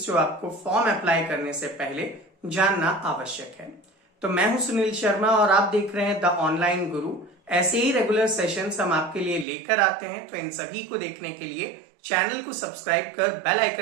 जो आपको फॉर्म अप्लाई करने से पहले जानना आवश्यक है। तो मैं हूं सुनील शर्मा और आप देख रहे हैं द ऑनलाइन गुरु। ऐसे ही रेगुलर सेशंस हम आपके लिए लेकर आते हैं, तो इन सभी को देखने के लिए चैनल को सब्सक्राइब कर बेल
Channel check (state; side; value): drops out; left; at 9.5 s